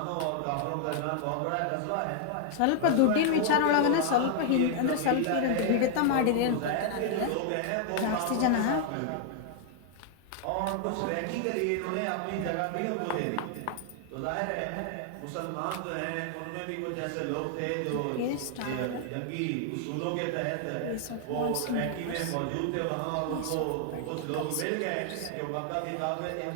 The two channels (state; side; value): different; both; correlation 0.00